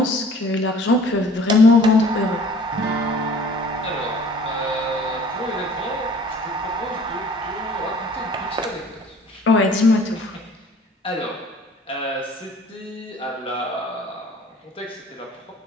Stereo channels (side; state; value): both; normal; correlation 0.51